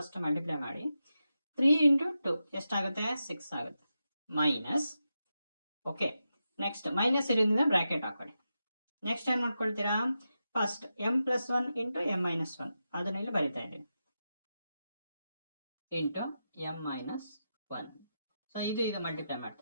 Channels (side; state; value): both; inverted; correlation -0.89